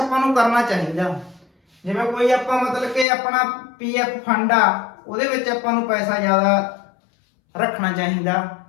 ਨੂੰ ਕਰਨਾ ਚਾਹੀਦਾ। ਜਿਵੇਂ ਕੋਈ ਆਪਾਂ ਮਤਲਬ ਕਿ ਆਪਣਾ PF ਫੰਡ ਆ, ਉਹਦੇ ਵਿੱਚ ਆਪਾਂ ਨੂੰ ਪੈਸਾ ਜ਼ਿਆਦਾ ਰੱਖਣਾ ਚਾਹੀਦਾ।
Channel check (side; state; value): right; drops out; at 3.1 s